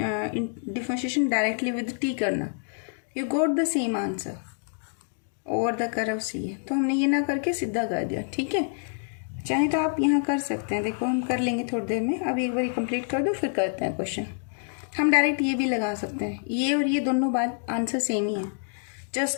डिफरेंशिएशन डायरेक्टली विद t करना, you got the same answer over the curve C है. तो हमने ये ना करके सीधा कर दिया. ठीक है, चाहे तो आप यहाँ कर सकते हैं. देखो हम कर लेंगे थोड़ी देर में, अभी एक बार कंप्लीट कर दो फिर करते हैं क्वेश्चन. हम डायरेक्ट ये भी लगा सकते हैं, ये और ये दोनों बात आंसर सेम ही है,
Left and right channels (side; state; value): right; silent; 60 dB below the other